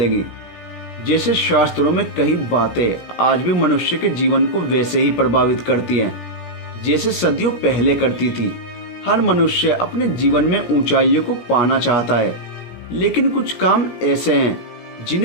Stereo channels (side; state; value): right; late; 17 ms